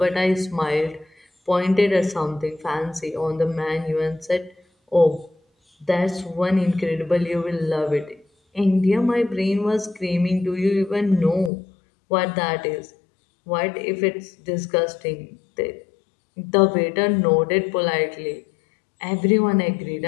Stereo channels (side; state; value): right; drops out; at 11.5 s